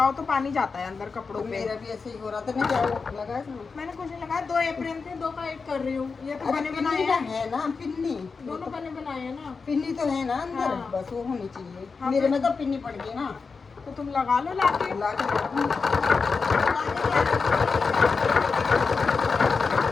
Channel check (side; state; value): right; quieter; 4.8 dB